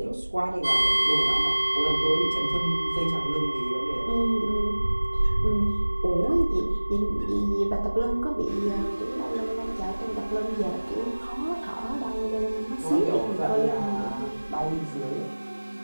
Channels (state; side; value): inverted; both; correlation -1.00